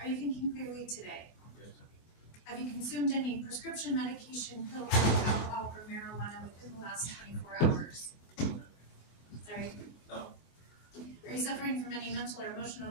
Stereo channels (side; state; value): right; late; 24 ms